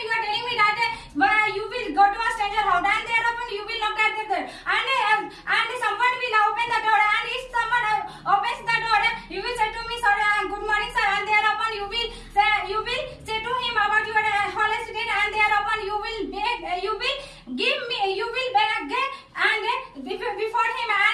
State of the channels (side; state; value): both; identical; correlation 1.00